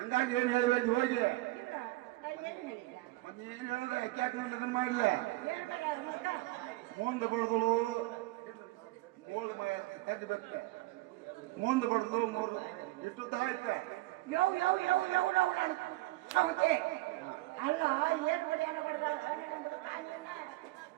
ಏನ್ ಹೇಳಿ ಬಂದಿ ಹೋಗಿ? ನೀನ್ ಹೇಳ್ದ ಯಾಕೆ ಅದನ್ನ ಮಾಡ್ಲ? ಮುಂದೆ ಬಡ್ದಲು ಮೂಲ ತೆಗಿಬೇಕ, ಮುಂದೆ ಬಡ್ದು ಮೂರು ಇಷ್ಟು ತರ ಐತೆ. ಅಲ್ಲ ಏನ್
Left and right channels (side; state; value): left; quieter; 19.4 dB